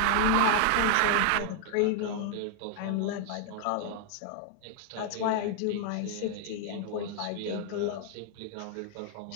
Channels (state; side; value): different; both; correlation 0.00